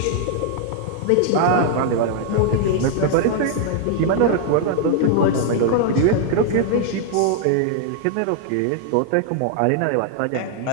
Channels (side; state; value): both; different; correlation 0.00